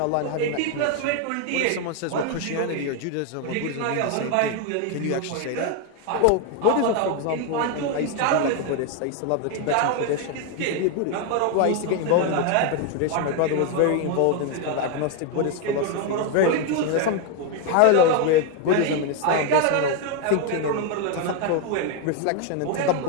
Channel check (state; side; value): different; both; correlation 0.01